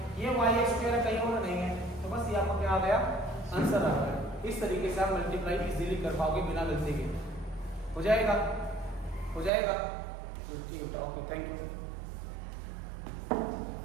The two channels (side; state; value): left; drops out; at 9.5 s